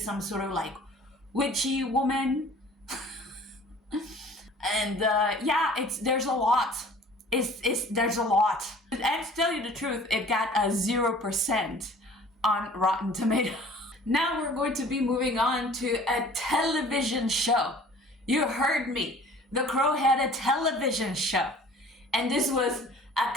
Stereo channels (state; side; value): normal; both; correlation 0.48